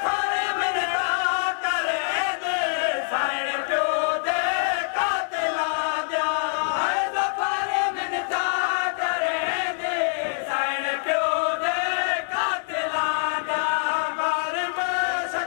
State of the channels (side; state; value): right; silent; digital silence